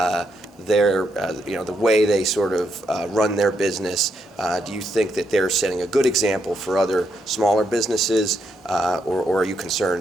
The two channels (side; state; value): both; normal; correlation 0.79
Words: their, the way they sort of run their business? Do you think that they're setting a good example for other smaller businesses, or are you